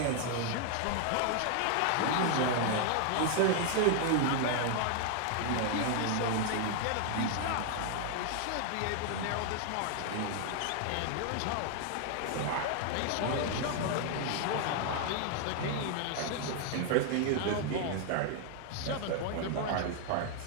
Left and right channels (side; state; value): both; different; correlation 0.00